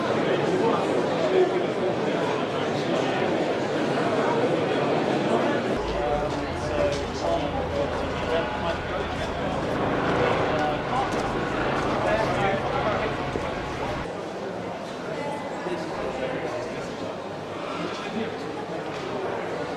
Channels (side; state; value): both; identical; correlation 1.00